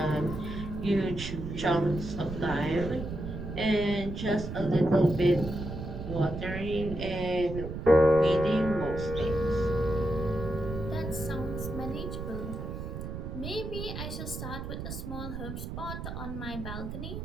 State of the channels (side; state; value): right; noise; rumble, 7 dB below the sound